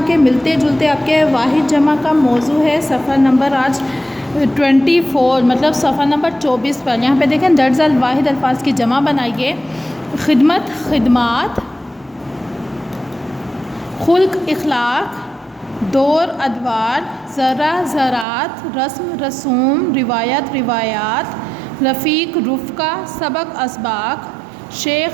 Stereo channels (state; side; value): drops out; left; at 18.2 s